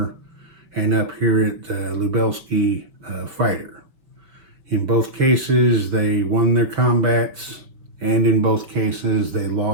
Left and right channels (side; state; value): left; late; 5.7 ms